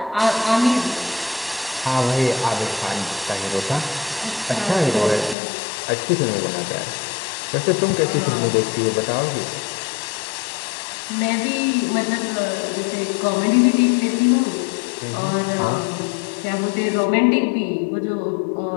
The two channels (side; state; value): right; drops out; at 5.4 s